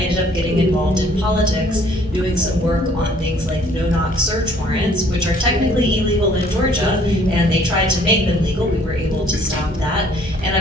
up getting involved in politics, doing some work on things like no-knock search warrants, which are technically illegal in Georgia, and they tried to make them legal. We were able to stop that. And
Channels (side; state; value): both; normal; correlation 0.59